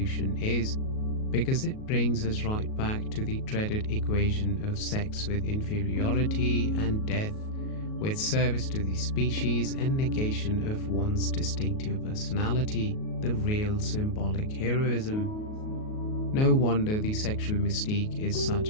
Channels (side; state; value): right; late; 38 ms